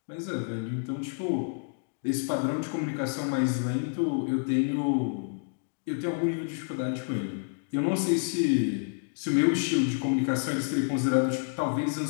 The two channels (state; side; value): silent; right; digital silence